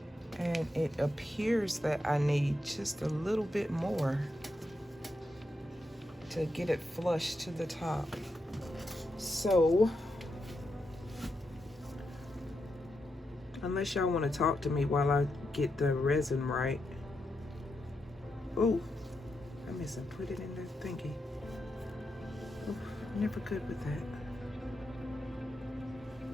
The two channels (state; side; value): normal; both; correlation 0.85